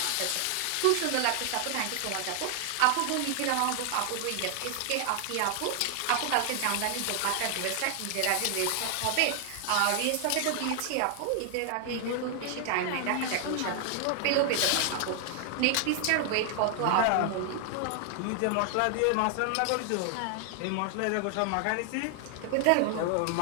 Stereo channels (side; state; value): both; different; correlation 0.00